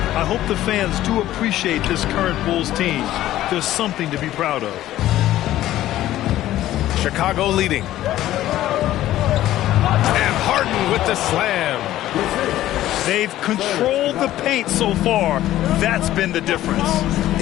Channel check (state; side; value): quieter; right; 14.0 dB